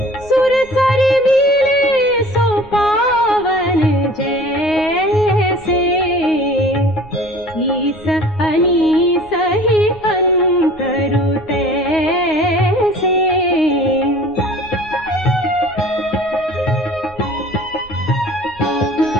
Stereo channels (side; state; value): right; noise; rumble, 23 dB below the sound